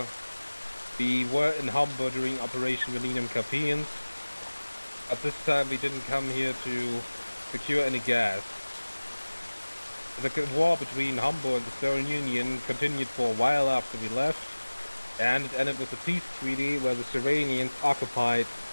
we were in Hombor during Operation Millennium Campaigns. But this time we didn't come here to secure any gas. The war between Hombor and the Soviet Union continued for a while after we left, and it ended with a peace treaty where the Seranians occupied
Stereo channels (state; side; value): inverted; both; correlation -1.00